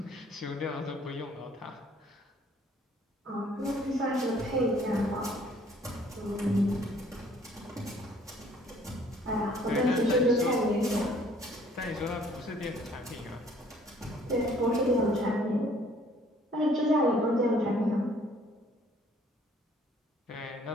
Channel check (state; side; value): normal; both; correlation 0.59